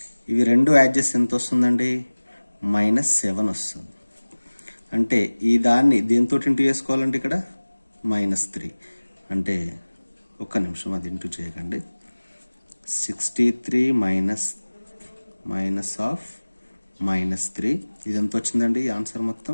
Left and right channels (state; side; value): inverted; both; correlation -1.00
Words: ఇవి రెండు యాడ్ చేస్తే ఎంత వస్తుందండి, -7 వస్తుంది. అంటే ఈ దాన్ని దీంతో ఇంటూ చేసుకోవాలంటే ఇక్కడ -3. అంటే ఒక్క నిమిషం, అది ఇంటూ చేయకండి. 63 మైనస్ ఆఫ్ -3, ఇది ఎంత వచ్చిందండి, ఆన్సర్